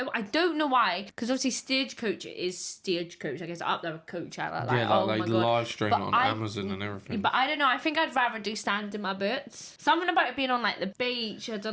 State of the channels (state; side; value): identical; both; correlation 1.00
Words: I don't know why, because obviously Stagecoach is Stagecoach. I guess up there with Coachella. Like, Yeah, oh like my they God. live stream But it on I- Amazon and everything. But I don't know. I think I'd rather do Stand in My Boots. Something about it being on like the beach. I don't